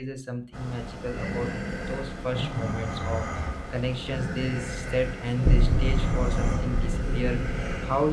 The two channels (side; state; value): both; identical; correlation 1.00